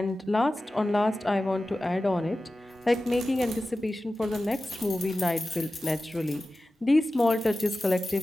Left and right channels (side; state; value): both; normal; correlation 0.95